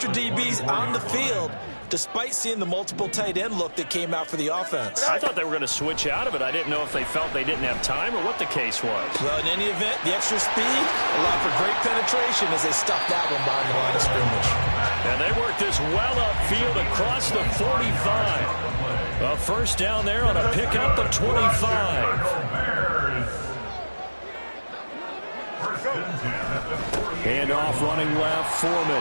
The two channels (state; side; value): inverted; both; correlation -1.00